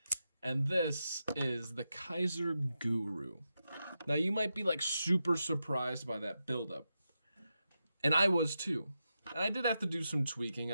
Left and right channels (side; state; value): both; inverted; correlation -0.88